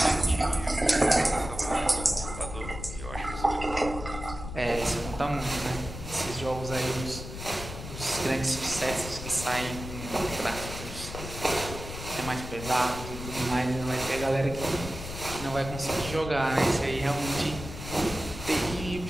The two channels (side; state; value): left; noise; rumble, 9 dB below the sound